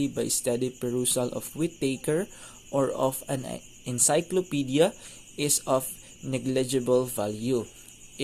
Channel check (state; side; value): identical; both; correlation 1.00